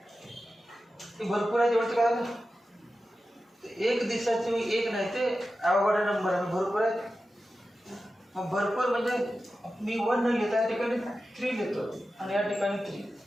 की भरपूर आहे. तेवढं काय ना, एक दिवसाचे एक नाही, ते अवघड नंबर आहे. भरपूर आहेत. मग भरपूर म्हणजे मी 1 न लिहिता या ठिकाणी 3 लिहितो आणि या ठिकाणी 3.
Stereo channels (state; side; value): normal; both; correlation 0.93